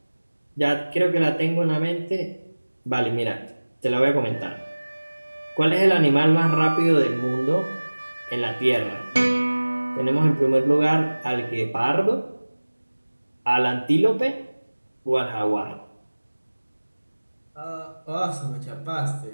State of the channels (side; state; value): both; inverted; correlation -1.00